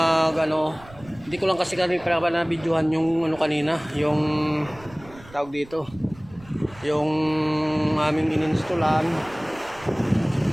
ko lang kasi kami para na videohan yung kanina, yung tawag dito, yung aming ininstallan.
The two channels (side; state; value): right; noise; rumble, 22 dB below the sound